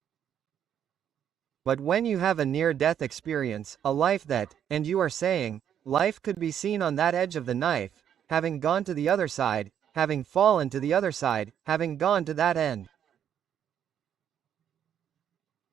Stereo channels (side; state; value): left; quieter; 9.3 dB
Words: But when you have a near-death experience, a life that, and you are saying, life could be seen on that edge of the knife, having gone to the other side, having fallen to the other side, having gone to that end.